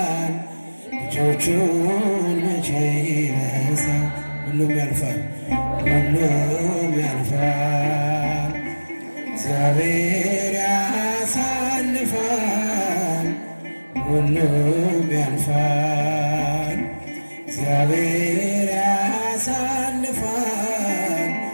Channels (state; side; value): inverted; both; correlation -1.00